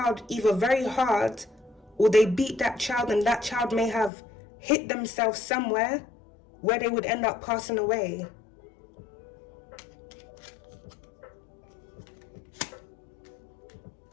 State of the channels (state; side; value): drops out; right; at 4.1 s